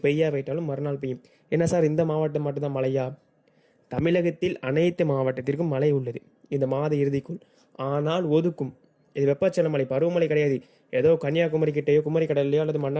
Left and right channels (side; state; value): both; identical; correlation 1.00